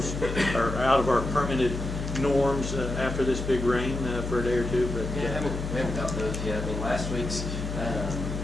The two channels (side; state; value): left; noise; hum, 5 dB below the sound